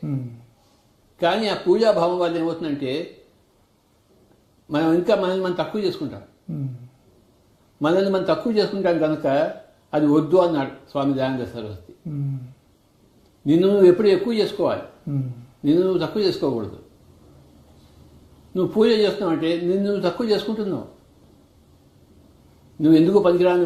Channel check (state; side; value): identical; both; correlation 1.00